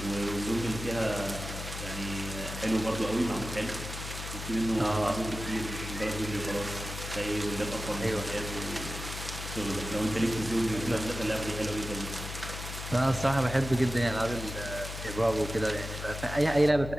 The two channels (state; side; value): noise; left; hum, 8 dB below the sound